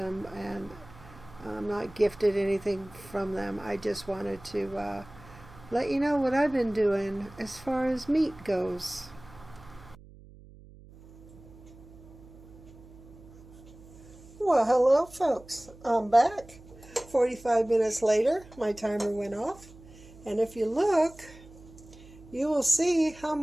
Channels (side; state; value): right; noise; hum, 21 dB below the sound